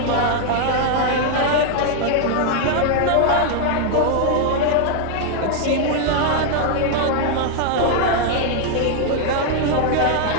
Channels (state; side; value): different; both; correlation 0.00